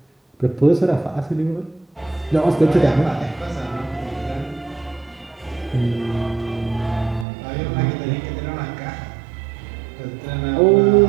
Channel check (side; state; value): left; drops out; at 7.2 s